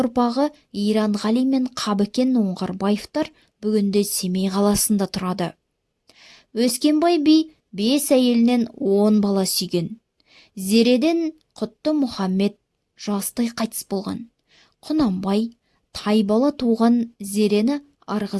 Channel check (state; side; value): identical; both; correlation 1.00